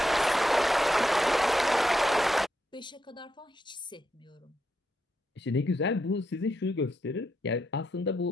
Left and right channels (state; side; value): normal; both; correlation 0.81